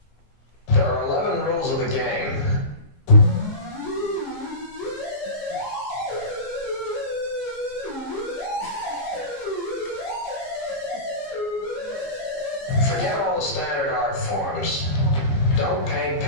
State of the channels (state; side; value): late; right; 15 ms